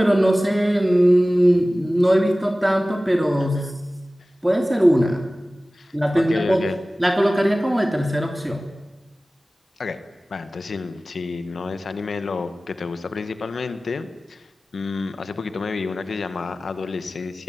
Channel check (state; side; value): normal; both; correlation 0.97